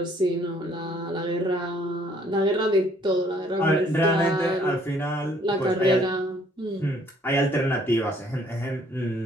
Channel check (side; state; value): both; normal; correlation 0.62